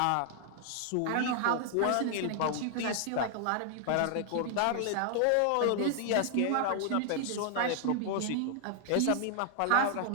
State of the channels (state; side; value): different; both; correlation 0.00